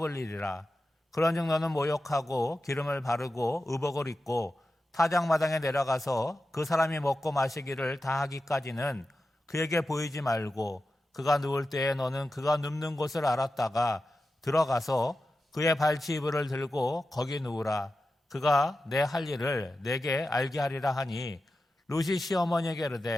그런즉 너는 모욕하고 기름을 바르고 의복을 입고 타작마당에 내려가서 그 사람이 먹고 마시기를 다 하기까지는 그에게 보이지 말고 그가 누울 때에 너는 그가 눕는 곳을 알았다가 들어가서 그의 발치이불을 들고 거기 누우라. 그가 내 할 일을 내게 알게 하리라 하니 룻이 시어머니에게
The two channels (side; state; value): both; normal; correlation 0.92